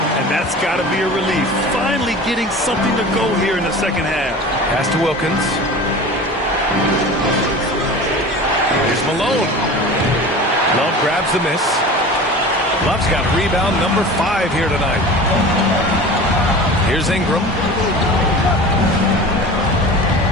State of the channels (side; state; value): both; normal; correlation 0.36